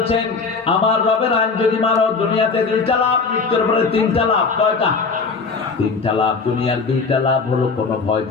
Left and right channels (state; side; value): quieter; right; 4.6 dB